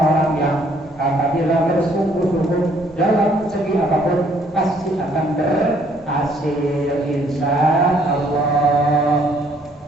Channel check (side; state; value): both; normal; correlation 0.64